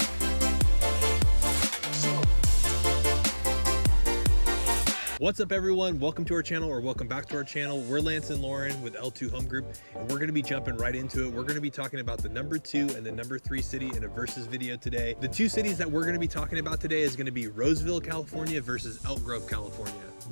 What's up everyone, welcome to our channel, or welcome back to our channel. We're Lance and Lauren with L2 Home Group, and we're going to be jumping right into it. We're going to be talking about the number 2 and the number 3 city in a versus video today. The two cities that we're going to be talking about today is going to be Roseville, California versus Elk Grove, California.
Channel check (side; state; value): both; inverted; correlation -1.00